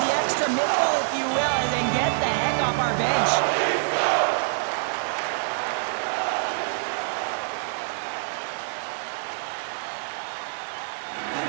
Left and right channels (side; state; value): left; silent; digital silence